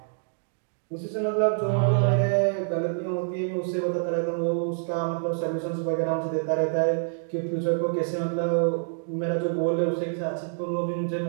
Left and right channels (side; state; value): left; silent; digital silence